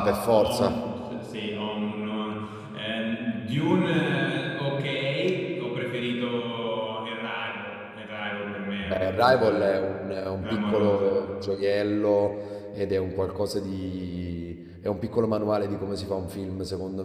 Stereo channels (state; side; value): identical; both; correlation 1.00